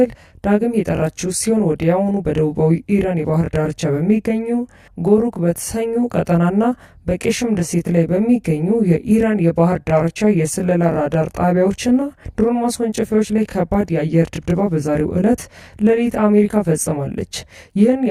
ዳግም የጠራችው ሲሆን ወዲያውኑ በደቡባዊ ኢራን የባህር ዳርቻ በሚገኙ ጎሩክ በተሰኙ ቀጠናና በቄሽም ደሴት ላይ በሚገኙ የኢራን የባህር ዳርቻ የስለላ ራዳር ጣቢያዎችና ድሮን ማስወንጨፊያዎች ላይ ከባድ የአየር ድብደባ በዛሬው ዕለት ሌሊት አሜሪካ ፈጽማለች። ይህን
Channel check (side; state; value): both; identical; correlation 1.00